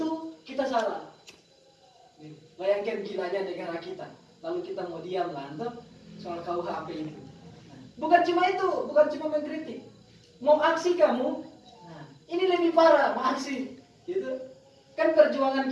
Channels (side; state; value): both; identical; correlation 1.00